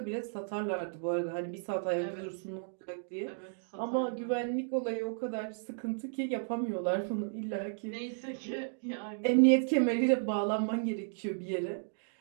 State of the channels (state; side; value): silent; left; digital silence